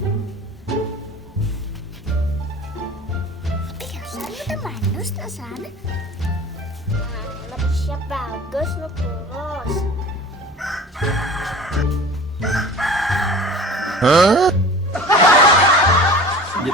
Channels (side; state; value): both; normal; correlation 0.41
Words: Sana udah manus na sana. Lebih siap bagus no kurus. Hah?